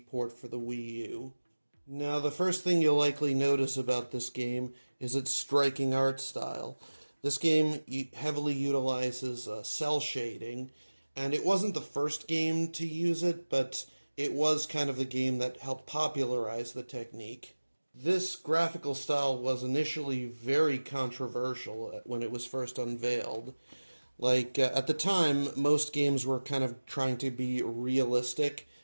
port for the Wii U. Now, the first thing you'll likely notice about this game is its striking art style. This game heavily utilizes cell shading, and it wasn't the first game to use it, but it was kind of the game that helped popularize the technique. This graphical style was initially very controversial when it was first unveiled. At the time, most games were kind of trying to be realistic,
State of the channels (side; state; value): both; inverted; correlation -1.00